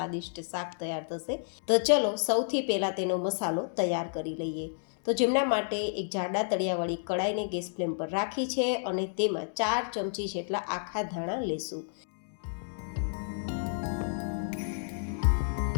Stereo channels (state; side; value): silent; right; digital silence